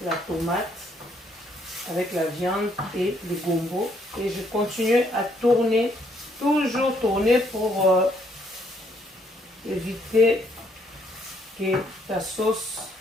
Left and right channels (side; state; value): both; normal; correlation 0.70